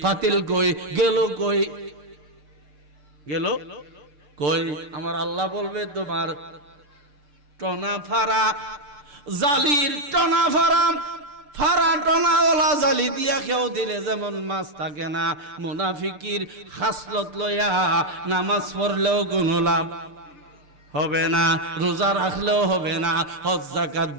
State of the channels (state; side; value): late; left; 6.8 ms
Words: ফাতিল কই, গেল কই, গেল কই। আমার আল্লাহ বলবে তোমার টনা ফারা জালির টনা ফারা, ফারা টনা ওলা জালি দিয়া কেউ দিলে যেমন মাছ থাকে না, মুনাফিকির খাসলত লয়া নামাজ পড়লেও কোনো লাভ হবে না, রোজা রাখলেও হবে না, হজ যাকাত